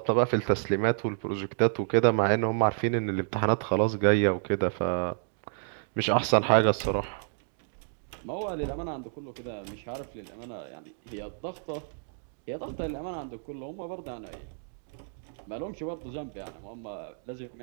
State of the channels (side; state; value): left; silent; digital silence